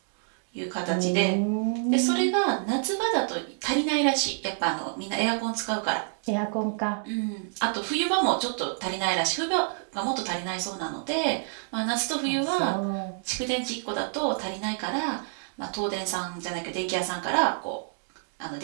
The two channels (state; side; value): silent; left; digital silence